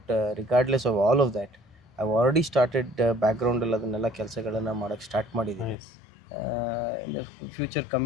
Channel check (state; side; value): drops out; right; at 5.8 s